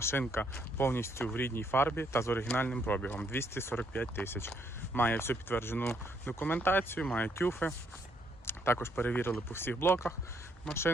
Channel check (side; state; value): both; normal; correlation 0.71